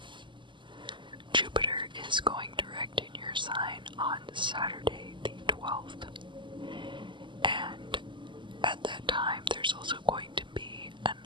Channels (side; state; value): left; late; 0.24 ms